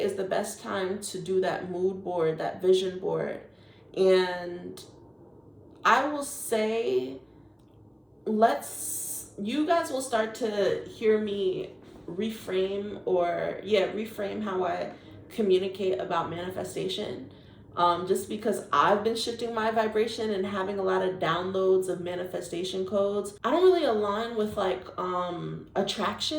the best time to do that mood board, that vision board. And I will say, you guys will start to hear me reframe how I communicate about manifestation. Just because I've been shifting my vibration and having a lot of downloads of manifestation codes. I don't really align with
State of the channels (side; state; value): both; identical; correlation 1.00